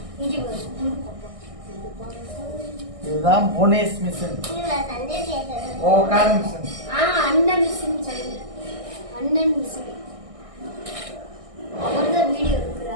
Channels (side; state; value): left; late; 1.6 ms